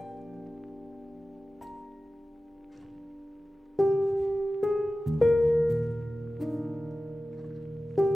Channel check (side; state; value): both; normal; correlation 0.95